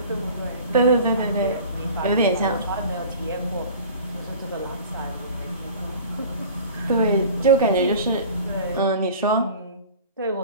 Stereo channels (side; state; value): both; inverted; correlation -0.42